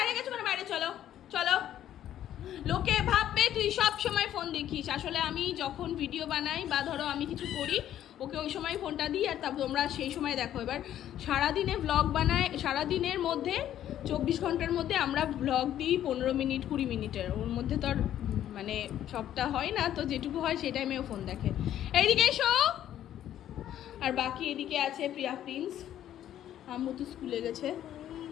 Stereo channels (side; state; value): right; quieter; 11.5 dB